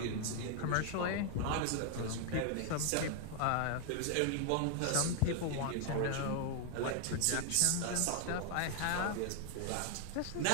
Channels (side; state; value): both; different; correlation 0.00